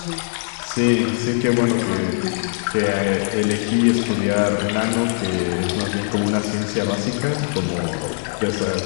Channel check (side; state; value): right; silent; digital silence